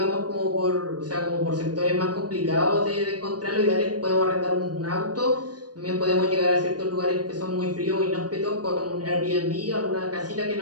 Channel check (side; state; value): left; late; 0.69 ms